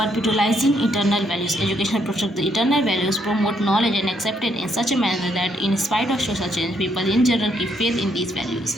internal values. Education protect the internal values, promote knowledge and accepted in such a manner that in spite of social change people in general keep faith in these values.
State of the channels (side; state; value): both; normal; correlation 0.73